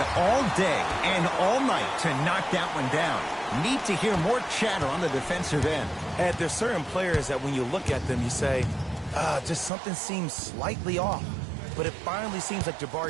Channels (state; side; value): drops out; left; at 9.7 s